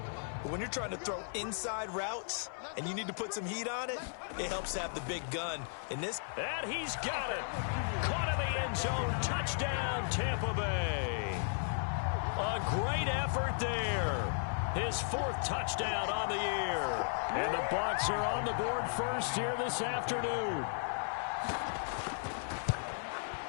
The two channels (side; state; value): right; silent; 54 dB below the other